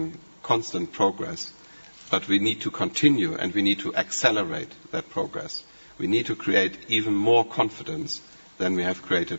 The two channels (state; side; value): inverted; both; correlation -1.00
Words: constant progress, but we need to continue and we need to accelerate that progress. We need to create even more confidence than we have